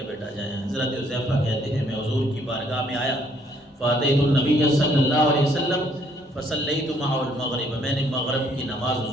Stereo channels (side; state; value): both; normal; correlation 0.65